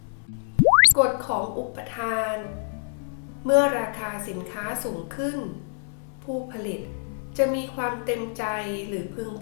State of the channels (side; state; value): right; silent; 61 dB below the other